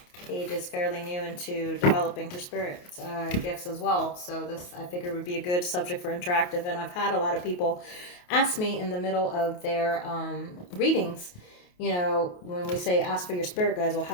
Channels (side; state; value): right; late; 28 ms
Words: Paige is fairly new into developing her spirit gifts as well. So this I figured would be a good subject for interactive. And I've had a lot of people ask me in the middle of their readings, when we say ask for your spirit guides, well,